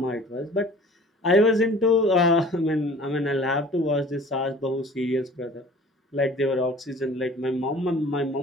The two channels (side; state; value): both; normal; correlation 0.47